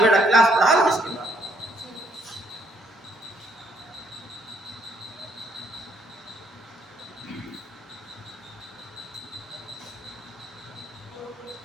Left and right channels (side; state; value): both; normal; correlation 0.68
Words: क्लास पढ़ा लो, इसके बाद